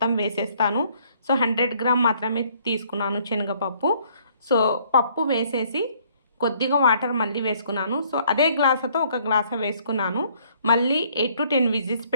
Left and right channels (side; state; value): both; inverted; correlation -0.63